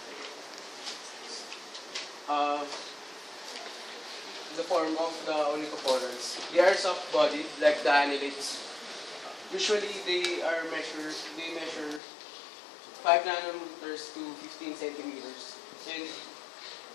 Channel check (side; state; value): right; drops out; at 12.0 s